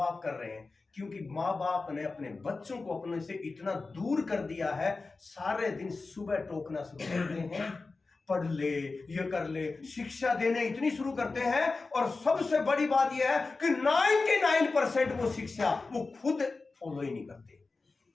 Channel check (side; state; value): right; quieter; 3.8 dB